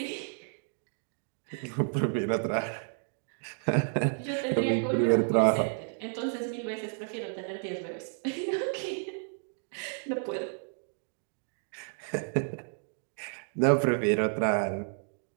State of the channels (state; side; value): silent; left; 57 dB below the other